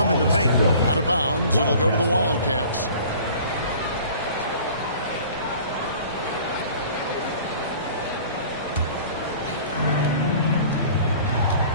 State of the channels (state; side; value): inverted; both; correlation -0.47